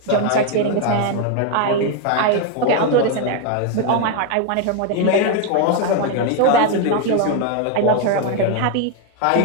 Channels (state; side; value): different; both; correlation 0.01